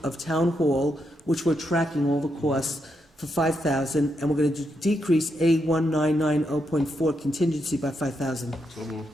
of town hall, which we're tracking all the costs, for $5,000, and we're going to decrease A1990.4 contingency by $5,000. So moved.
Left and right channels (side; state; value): both; normal; correlation 0.82